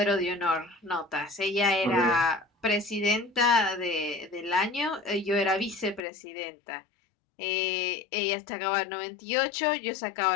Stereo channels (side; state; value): right; drops out; at 6.0 s